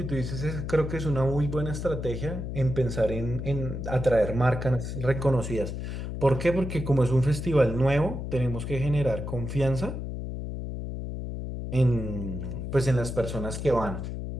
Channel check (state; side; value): noise; left; hum, 5 dB below the sound